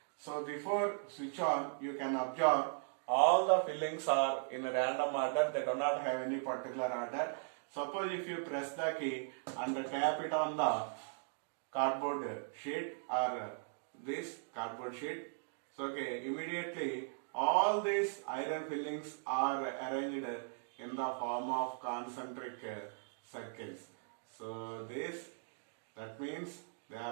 So before switch on, you can observe all the fillings are in a random order. They do not have any particular order. Suppose if you press the key and tap it on the cardboard sheet or this cardboard sheet, so okay, immediately all these iron fillings are arranged in the form of concentric circles. So that means they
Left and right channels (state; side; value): silent; left; digital silence